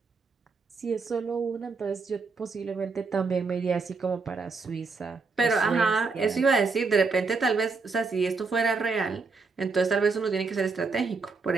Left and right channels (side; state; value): left; quieter; 4.4 dB